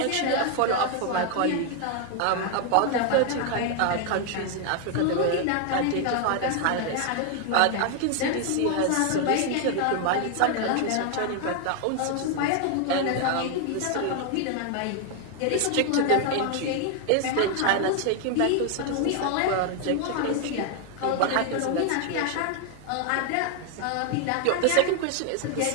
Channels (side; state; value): both; different; correlation 0.00